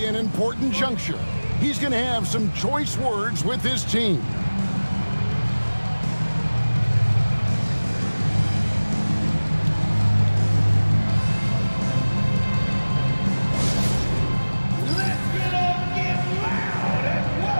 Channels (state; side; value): inverted; both; correlation -1.00